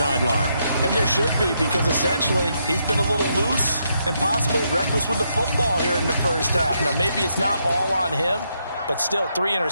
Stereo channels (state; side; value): inverted; both; correlation -0.78